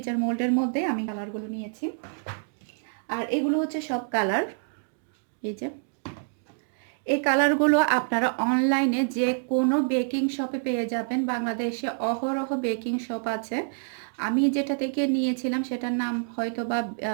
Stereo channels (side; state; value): left; silent; digital silence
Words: মোল্ডের মধ্যে আমি কালারগুলো নিয়েছি। আর এগুলো হচ্ছে সব কালার। এই যে এই কালারগুলো আপনারা অনলাইনে যে কোনো বেকিং শপে পেয়ে যাবেন। বাংলাদেশে অহরহ বেকিং শপ আছে। আমি যেটা থেকে নিয়েছিলাম সেটার নাম হয়তো বা